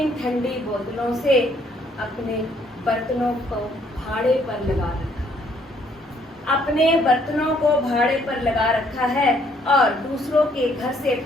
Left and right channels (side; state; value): both; normal; correlation 0.66